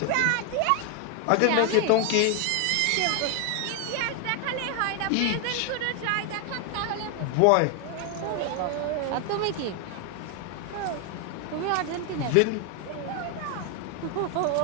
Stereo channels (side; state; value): both; different; correlation 0.01